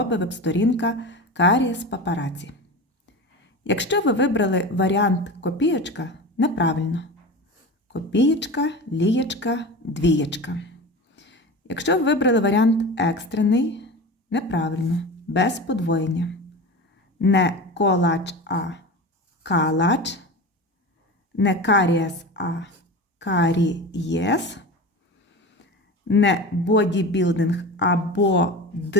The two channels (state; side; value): normal; both; correlation 0.29